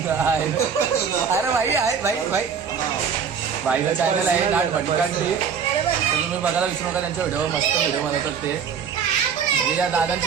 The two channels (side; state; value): left; quieter; 6.9 dB